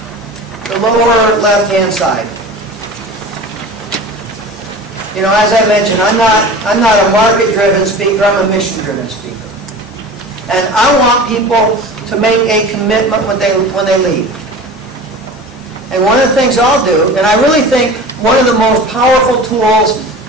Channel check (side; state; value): both; normal; correlation 0.36